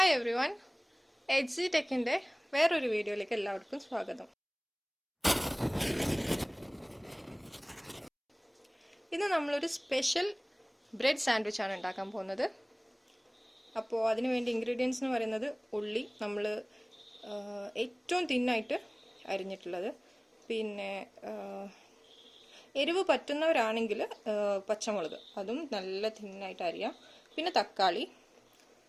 every one, H ടെക്കിൻ്റെ വേറൊരു വീഡിയോയിലേക്ക് എല്ലാവർക്കും സ്വാഗതം. ഇന്ന് നമ്മളൊരു സ്പെഷ്യൽ ബ്രെഡ് സാൻഡ്വിച്ചാണ് ഉണ്ടാക്കാൻ പോകുന്നത്. അപ്പോൾ അതിന് വേണ്ടി ഇൻഗ്രീഡിയൻസ് എന്ന് പറയുന്നത് ഉള്ളി നമ്മൾ ഏറ്റവും തിന്നായിട്ട് അരിഞ്ഞിട്ടുള്ളത്, പിന്നെ എരിവ് പറ്റുന്നവരാണെങ്കിൽ പച്ചമുളക് അതും നല്ല തിന്നായിട്ട് അരിയാം, പിന്നെ തക്കാളി,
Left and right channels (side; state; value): both; identical; correlation 1.00